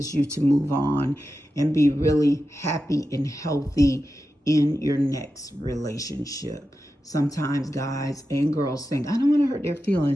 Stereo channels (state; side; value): normal; both; correlation 0.91